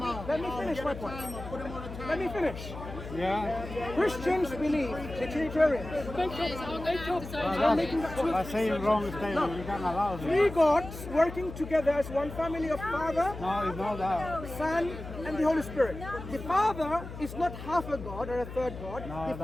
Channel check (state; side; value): noise; left; hum, 11 dB below the sound